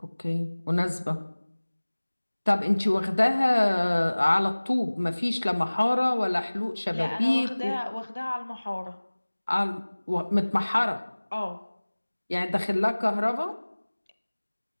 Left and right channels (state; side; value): inverted; both; correlation -1.00